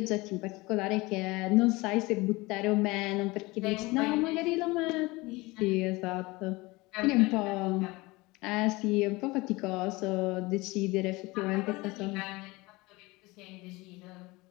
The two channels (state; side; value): quieter; right; 22.6 dB